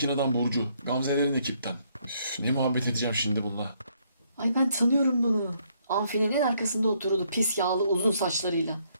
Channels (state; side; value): inverted; both; correlation -0.70